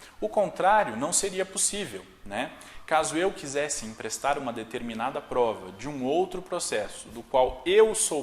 O contrário não seria possível, né? Caso eu quisesse emprestar uma determinada prova de um outro processo, do qual eu sou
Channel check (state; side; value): identical; both; correlation 1.00